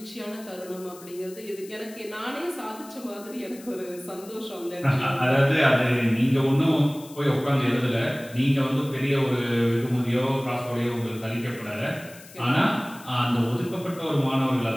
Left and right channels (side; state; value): left; noise; hiss, 20 dB below the sound